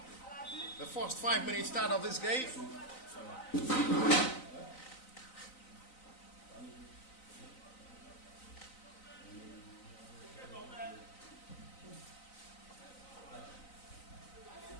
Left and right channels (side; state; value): right; late; 3.9 ms